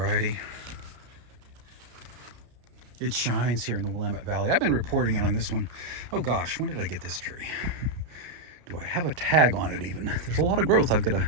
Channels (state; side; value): late; left; 33 ms